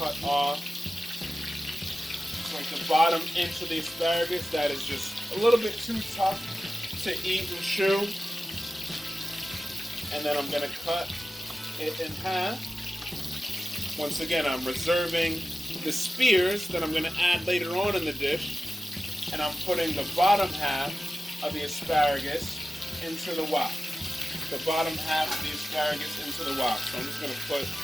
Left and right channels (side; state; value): both; normal; correlation 0.94